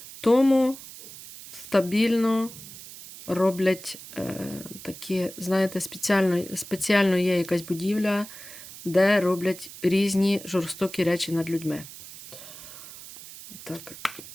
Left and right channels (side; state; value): right; noise; hiss, 15 dB below the sound